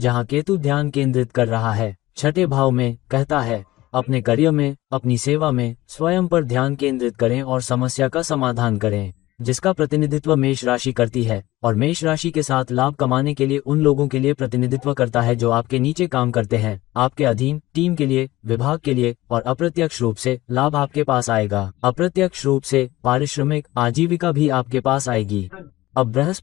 केतु ध्यान केंद्रित कर रहा है छठे भाव में, कहता है अपने कार्य में, अपनी सेवा में स्वयं पर ध्यान केंद्रित करें और समस्या का समाधान करें, जिसका प्रतिनिधित्व मेष राशि करती है। और मेष राशि के साथ लाभ कमाने के लिए उन लोगों के लिए प्रतिनिधित्व करता है जो आपके नीचे काम करते हैं, आपके अधीन, टीम के लिए, विभाग के लिए। और अप्रत्यक्ष रूप से लाभ आपके पास आएगा। अप्रत्यक्ष रूप से पारिश्रमिक आजीविका भी आपके पास आएगी। अब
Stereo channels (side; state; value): right; quieter; 17.5 dB